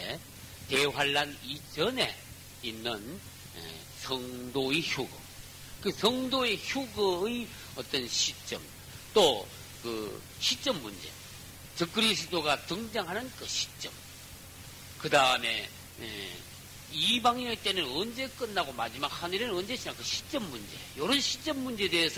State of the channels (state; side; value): identical; both; correlation 1.00